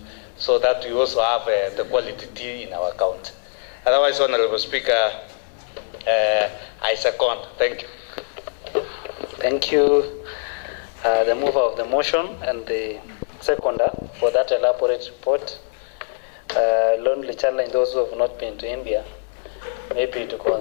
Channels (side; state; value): right; silent; 64 dB below the other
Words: so that we also have the quality tea in our county. Otherwise, Honorable Speaker, I second. Thank you. Thank you, the mover of the motion and the seconder for that elaborate report. Lonely challenge those who have not been to India, maybe to